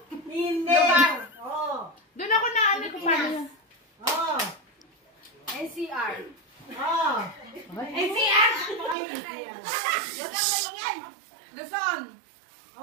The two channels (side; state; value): left; drops out; at 9.0 s